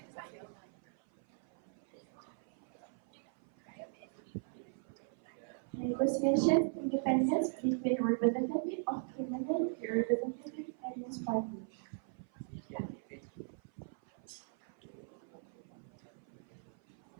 Negotiations independence between representative of criminal and representative against party.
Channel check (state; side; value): silent; left; 52 dB below the other